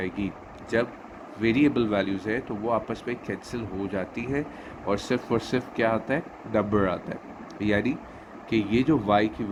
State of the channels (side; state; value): both; identical; correlation 1.00